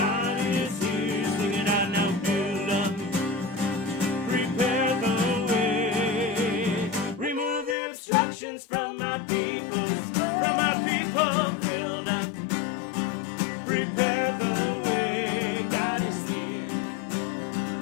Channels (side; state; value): right; drops out; at 7.8 s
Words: is here. Sing it out now. Build up, prepare the way. Remove the obstructions from my people. From my people. Build up, prepare the way. God is here.